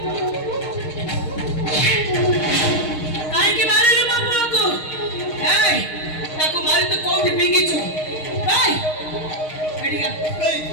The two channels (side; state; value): right; late; 6.4 ms